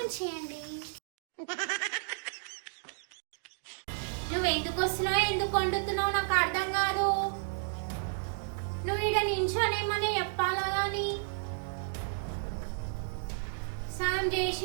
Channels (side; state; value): left; silent; digital silence